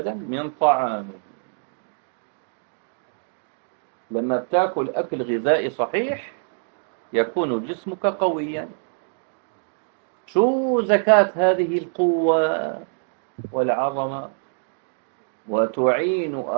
من طعامه. لما بتاكل أكل غذائي صحيح يكون جسمك قويا. شو زكاة هذه القوة والعظمة؟ وتعين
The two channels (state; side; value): silent; left; digital silence